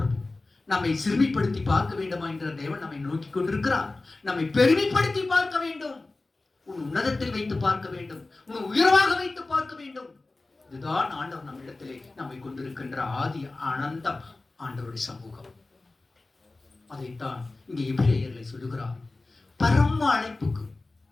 நம்மை சிறுமிப்படுத்தி பார்க்க வேண்டுமா என்ற தேவன் நம்மை நோக்கி கொண்டிருக்கிறார். நம்மை பெருமைப்படுத்தி பார்க்க வேண்டும், உன் உன்னதத்தில் வைத்து பார்க்க வேண்டும், உன் உயர்வாக வைத்து பார்க்க வேண்டும். இதுதான் ஆண்டவர் நம்மிடத்திலே நம்மை கொண்டிருக்கின்ற ஆதி அனந்தம் ஆண்டவருடைய சமூகம். அதைத்தான் இங்கே எபிரேயர்களை சொல்லுகிறார். பரம அழைப்புக்கு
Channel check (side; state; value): right; quieter; 3.3 dB